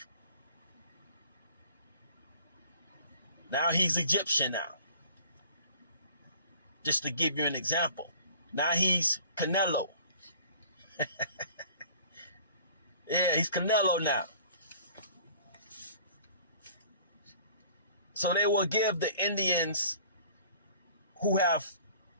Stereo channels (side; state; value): both; inverted; correlation -0.50